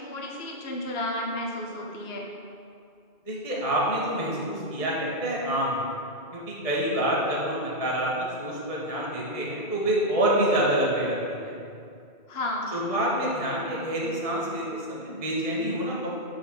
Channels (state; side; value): late; right; 2.3 ms